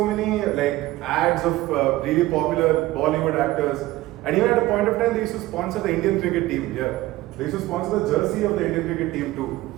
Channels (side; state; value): left; quieter; 17.3 dB